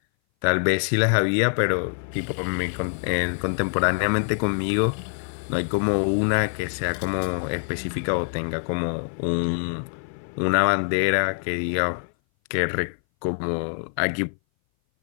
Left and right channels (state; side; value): silent; right; 59 dB below the other